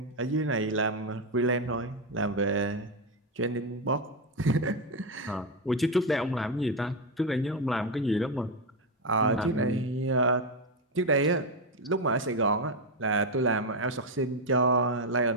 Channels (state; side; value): normal; both; correlation 0.08